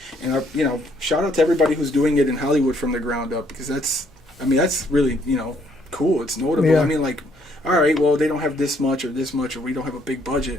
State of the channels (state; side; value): normal; both; correlation 0.68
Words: And shout out to everybody who's doing it in Hollywood from the ground up, because that's really cool. It's notable. Yeah. I mean, like, all right, well, they don't have this much, or we don't have a big